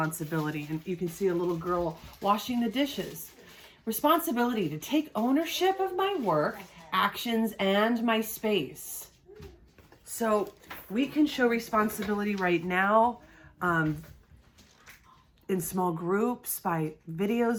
and you can see a little girl washing the dishes. Responsibility, to take ownership of my work, actions, and my space. So we can show responsibility right now in small groups, by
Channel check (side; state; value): both; identical; correlation 1.00